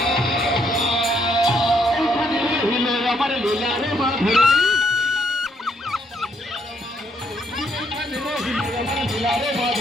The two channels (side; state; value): both; normal; correlation 0.72